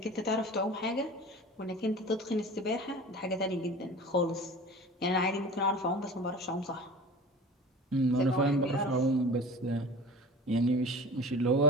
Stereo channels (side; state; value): both; normal; correlation 0.38